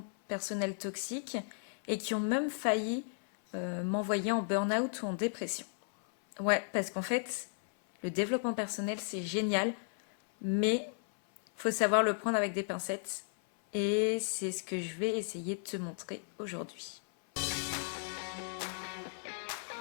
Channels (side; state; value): right; silent; 55 dB below the other